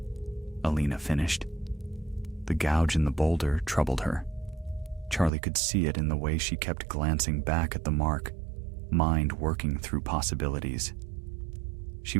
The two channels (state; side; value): drops out; left; at 5.3 s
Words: Alina finished. The gouge in the boulder troubled her. Charlie could see it in the way she kept glancing back at the mark, mind working through possibilities. She